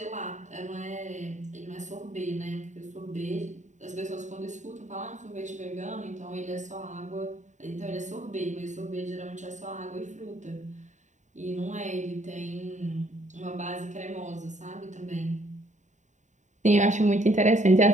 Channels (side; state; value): left; late; 0.35 ms